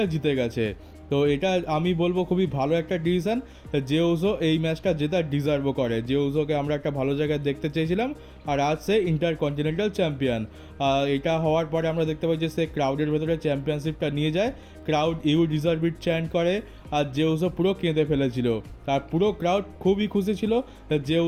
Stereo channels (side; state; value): both; identical; correlation 1.00